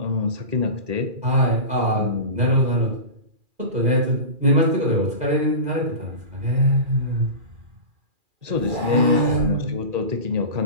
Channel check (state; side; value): late; left; 2.4 ms